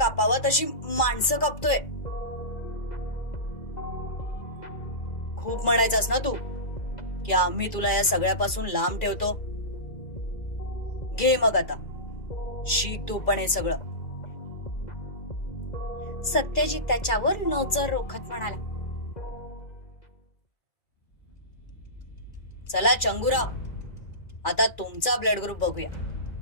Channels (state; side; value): late; right; 2.3 ms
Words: तशी माणसं कापतोय. खूप म्हणायचंस ना तू की आम्ही तुला या सगळ्यापासून लांब ठेवतो. घे मग आता, शिक तू पण हे सगळं. सत्यजित त्याच्यावर नजर रोखत म्हणाला. चला चंगुराव, आता तुमचा ब्लड ग्रुप बघूया.